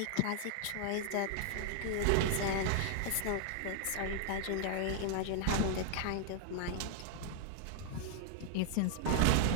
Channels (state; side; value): different; both; correlation 0.00